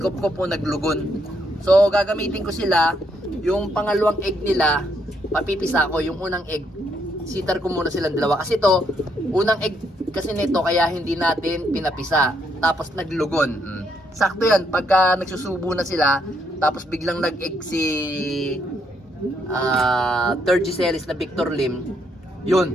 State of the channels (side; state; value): both; normal; correlation 0.74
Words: po naglugon. So gagamitin ko sila. Yung pangalawang egg nila, papipisa ko. Yung unang egg, sitar ko muna silang dalawa. Kasi to, unang egg kasi nito kaya hindi natin pinapisa. Tapos naglugon. Sakto yan. Pagka nagsusubo na sila, tapos biglang nag-egg si third G series na Victor Lim,